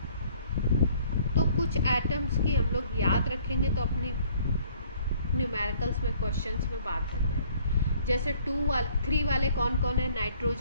तो कुछ एटम्स की हम लोग याद रखेंगे तो अपनी न्यूमेरिकल्स में क्वेश्चंस में बात बन जाएगी। जैसे 3 वाले कौन कौन है,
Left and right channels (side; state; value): both; inverted; correlation -0.59